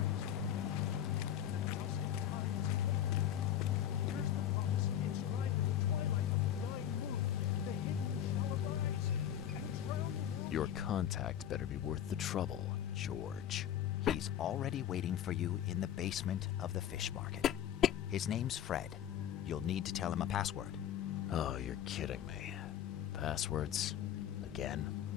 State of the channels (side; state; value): right; quieter; 10.4 dB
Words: Your contact better be worth the trouble, George. He's already waiting for you in the basement of the fish market. His name's Fred. You'll need to tell him a password. Oh, you're kidding me. Passwords? Again?